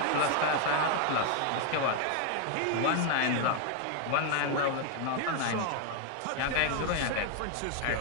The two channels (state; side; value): different; both; correlation 0.00